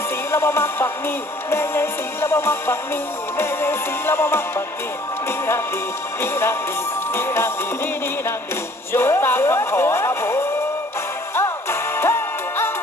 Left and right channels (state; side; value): normal; both; correlation 0.57